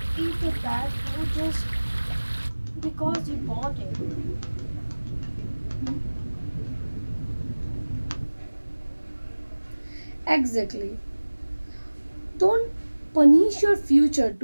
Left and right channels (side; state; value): both; inverted; correlation -1.00